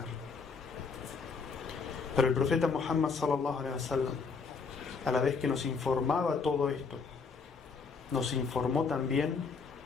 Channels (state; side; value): quieter; right; 5.0 dB